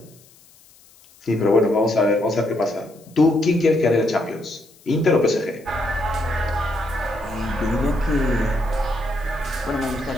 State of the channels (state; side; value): noise; left; hiss, 27 dB below the sound